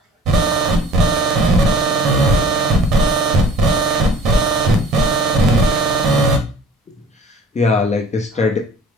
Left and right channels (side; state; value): both; normal; correlation 0.48